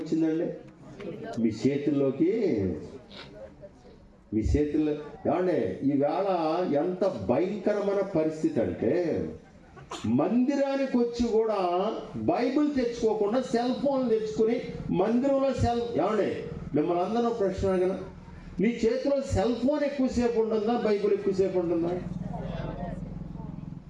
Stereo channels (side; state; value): both; identical; correlation 1.00